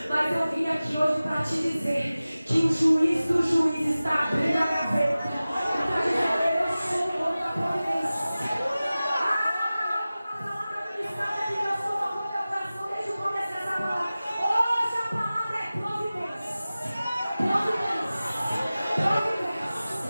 Mas eu vim aqui hoje para te dizer que o juiz do juiz está abrindo a gaveta. Está dizendo: eu sou o dono da providência. A palavra ministrada que eu sou o dono do meu coração desde o começo dessa palavra. Hoje a palavra é providência. Providência. Providência.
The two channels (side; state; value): both; inverted; correlation -0.97